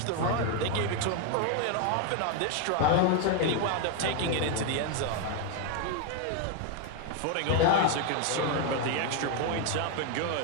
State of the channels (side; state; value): both; different; correlation 0.01